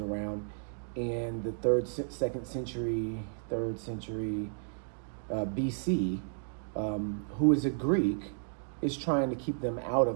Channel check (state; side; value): silent; left; digital silence